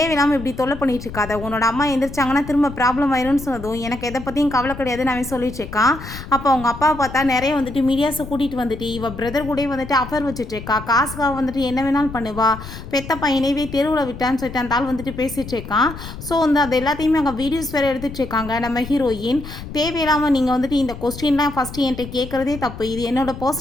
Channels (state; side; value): noise; left; rumble, 12 dB below the sound